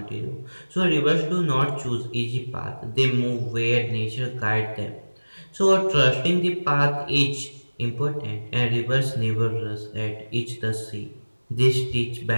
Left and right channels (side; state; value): both; inverted; correlation -1.00